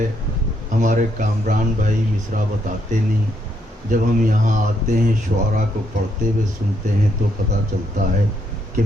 ہمارے کامران بھائی مصرع بتاتے نہیں، جب ہم یہاں آتے ہیں شعراء کو پڑھتے ہوئے سنتے ہیں تو پتہ چلتا ہے کہ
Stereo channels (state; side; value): normal; both; correlation 0.75